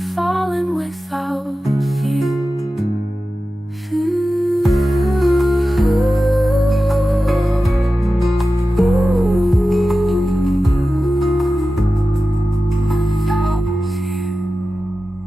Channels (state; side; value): normal; both; correlation 0.93